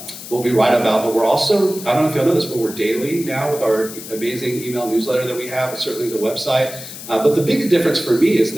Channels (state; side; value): noise; left; hiss, 12 dB below the sound